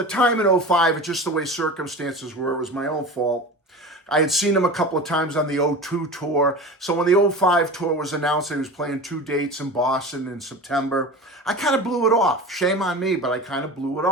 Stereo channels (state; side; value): normal; both; correlation 0.32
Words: time in 05, it's just the way circumstances were. It was my own fault. I had seen him a couple of times on the 02 tour. So when the 05 tour was announced, he was playing 2 dates in Boston in September. I kind of blew it off. Shame on me, but I kind of blew it